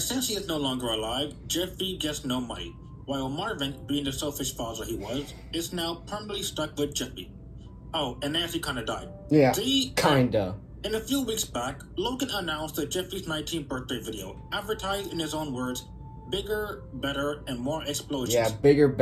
since he is no longer alive, Jeffy gets no money, while Marvin, being the selfish father he was, is now permanently stuck with Jeffy. Oh, and Nancy kinda died. Yeah, kinda. And a few weeks back, Logan announced the Jeffy's 19th birthday video, advertised in his own words, bigger, better, and more explosions. Yeah, bigger,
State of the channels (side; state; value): both; identical; correlation 1.00